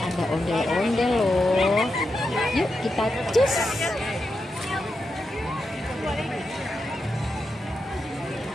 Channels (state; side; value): normal; both; correlation 0.87